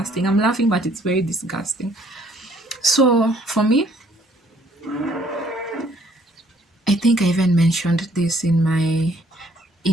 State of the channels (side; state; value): both; normal; correlation 0.63